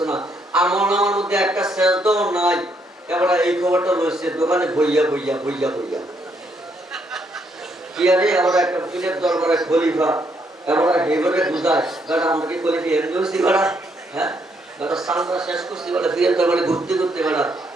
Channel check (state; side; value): normal; both; correlation 0.73